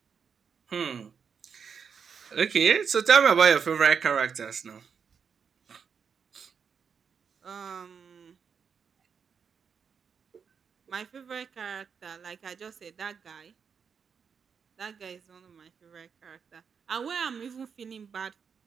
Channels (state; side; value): quieter; left; 6.5 dB